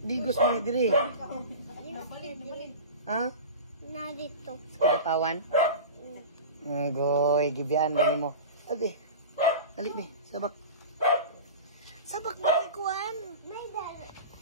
Digos mo ni Dre. Ha? Na dito. Sa Kidapawan? Goy, gibian ba ni mo? Ate. Dali be, sabak. Sabak mo ni Kuan. May dala.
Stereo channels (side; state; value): both; inverted; correlation -0.32